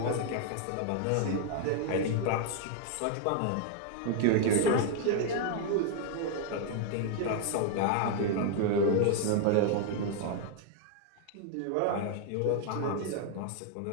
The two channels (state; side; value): different; both; correlation 0.00